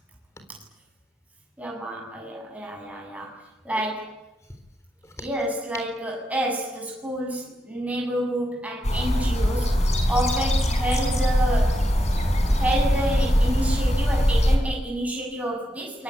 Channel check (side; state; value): both; normal; correlation 0.84